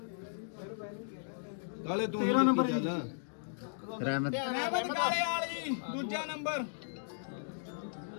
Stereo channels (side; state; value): right; silent; digital silence